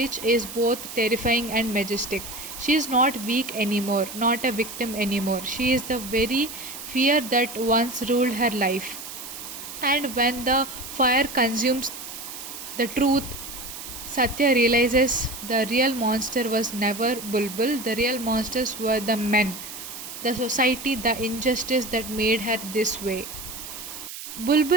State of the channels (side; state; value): right; noise; hiss, 10 dB below the sound